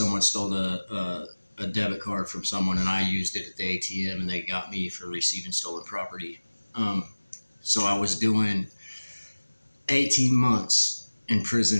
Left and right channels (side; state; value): both; inverted; correlation -1.00